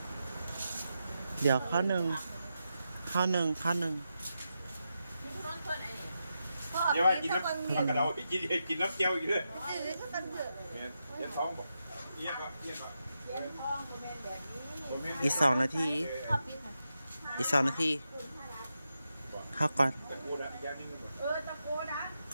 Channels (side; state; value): both; inverted; correlation -0.87